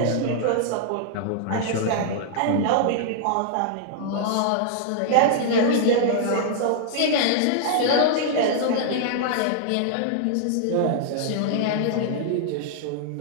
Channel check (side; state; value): both; different; correlation -0.01